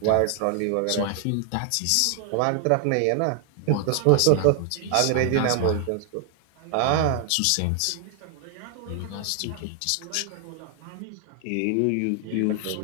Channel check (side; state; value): both; different; correlation 0.00